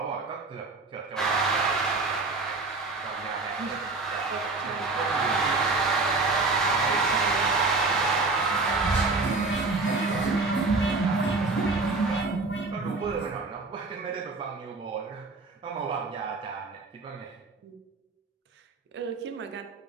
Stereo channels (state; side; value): quieter; left; 3.6 dB